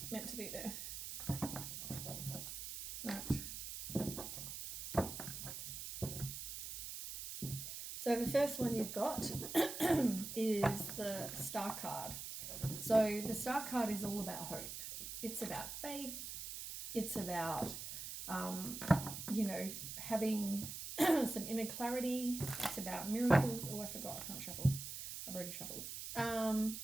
meant to be there. Right. So the first one you've got is the Star card. So the Star card is all about hope. It's about faith. It's about, having some inner clarity. It's about miracles. Oh, I forgot. I can't shuffle. I've already shuffled.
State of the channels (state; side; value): noise; right; hiss, 7 dB below the sound